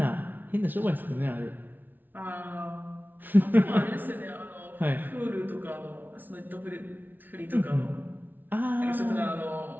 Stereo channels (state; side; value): late; left; 0.088 ms